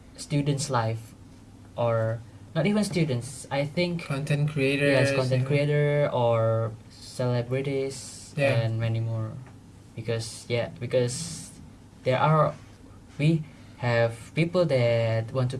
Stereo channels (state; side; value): identical; both; correlation 1.00